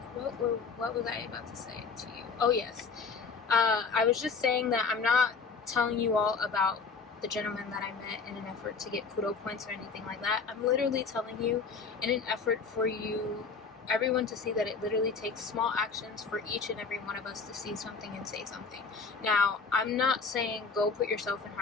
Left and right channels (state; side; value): quieter; right; 5.0 dB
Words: What was I about to say to you? Oh yes, I was just saying that I'm not telling you all about the gentleman that I met in an effort to get kudo points or anything like that. I'm literally telling you in an effort for you, everyone, to see that it literally takes small actions for each and every one of us to see something and say something. Now, I'm not saying go put yourself in